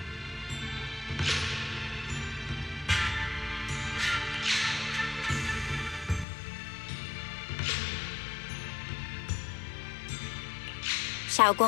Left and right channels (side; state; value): right; drops out; at 6.2 s